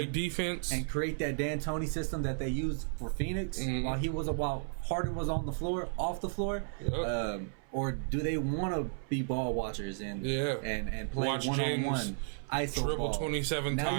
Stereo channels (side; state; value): left; silent; 55 dB below the other